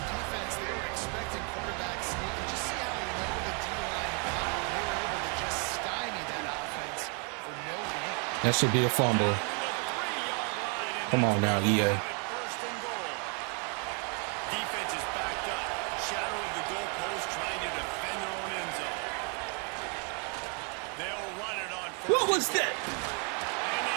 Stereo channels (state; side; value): quieter; left; 38.3 dB